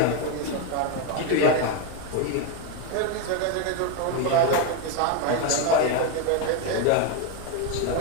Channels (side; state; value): both; different; correlation 0.02